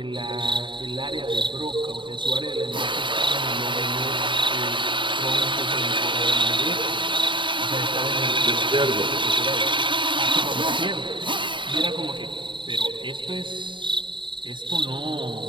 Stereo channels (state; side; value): late; left; 0.23 ms